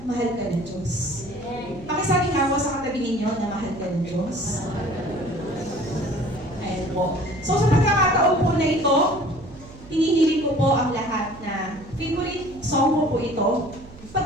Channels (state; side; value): noise; right; hum, 19 dB below the sound